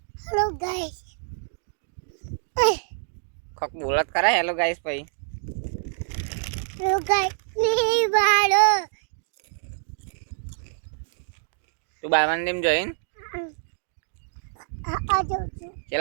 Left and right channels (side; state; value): left; silent; digital silence